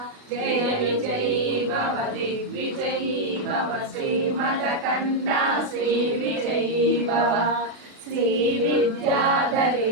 जय विजयी भव दिग्विजयी भव श्रीमदकण्डा श्री विजयी भव श्री विद्याधरी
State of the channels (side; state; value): left; late; 36 ms